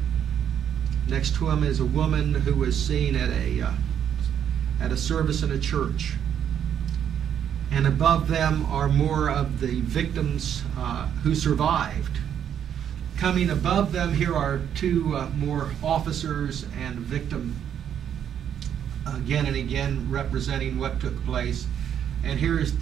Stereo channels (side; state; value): left; quieter; 9.1 dB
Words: Next to him is a woman who was seen at a service in a church. And above them are more of the victims who survived. Coming above them here are two more officers and a victim, again and again representing what took place. And here is